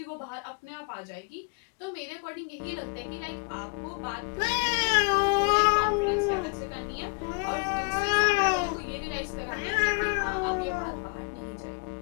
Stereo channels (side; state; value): right; quieter; 33.2 dB